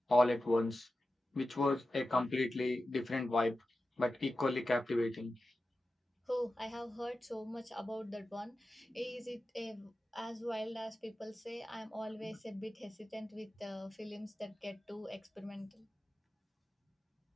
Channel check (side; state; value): both; normal; correlation 0.93